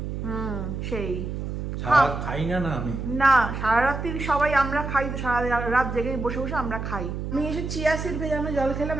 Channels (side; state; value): right; noise; hum, 5 dB below the sound